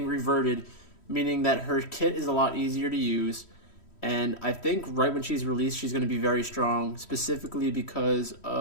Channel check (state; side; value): late; right; 3.1 ms